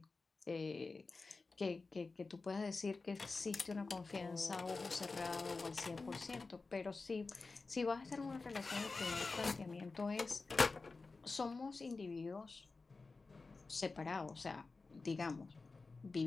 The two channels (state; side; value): quieter; right; 3.9 dB